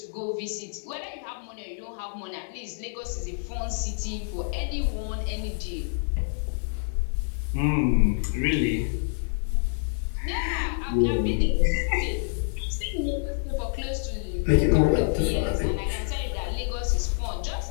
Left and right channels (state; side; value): silent; right; digital silence